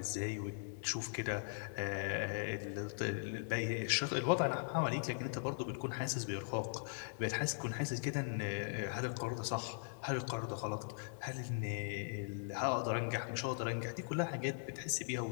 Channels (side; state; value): right; silent; digital silence